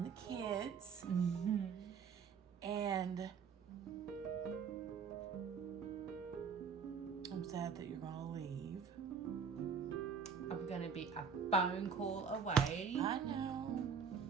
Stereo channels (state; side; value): quieter; left; 6.3 dB